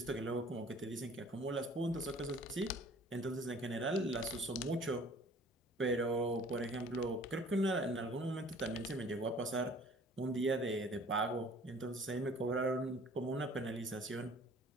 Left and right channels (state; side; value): normal; both; correlation 0.51